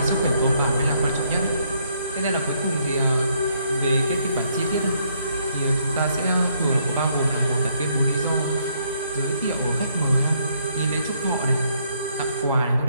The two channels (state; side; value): inverted; both; correlation -0.71